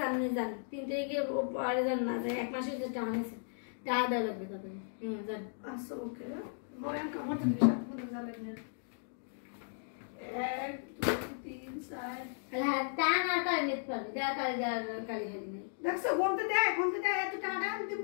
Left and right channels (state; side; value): silent; right; digital silence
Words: আপনি যান 3 তারিখে পরে যান না যায় এক মাসের যে টাকা নিয়েছেন টাকা দেওয়া লাগবে তাদের হ্যাঁ যান আচ্ছা ওকে মনে কামড় দিবি সাথে জানেন না 1 2 3 4 হ্যাঁ টাকা না টাকা নিতে পারবে দেখা করে কালি খালি নেই দেখছো গন্তে দেয় এত টাকা দিম